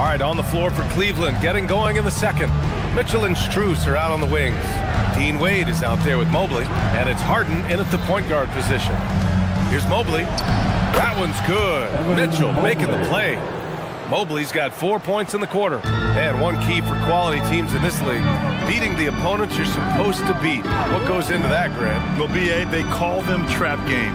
right, on the floor for Cleveland, getting going in the second. Mitchell and Strus are out on the wings. Dean Wade is out there with Mobley, and it's Harden in at the point guard position. Here's Mobley. That one's good. Mitchell making the play. Mobley's got 4 points in the quarter. And one key for quality teams in this league, beating the opponents you're supposed to beat. What goes into that, Grant? Well, BA, they call them trap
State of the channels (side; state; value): both; identical; correlation 1.00